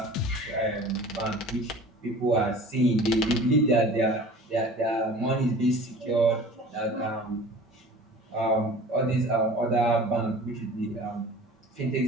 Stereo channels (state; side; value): normal; both; correlation 0.42